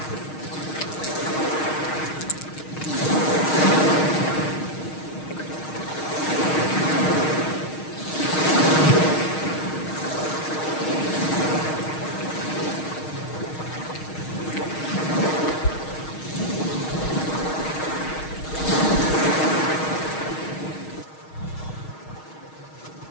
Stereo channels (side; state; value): right; late; 6.4 ms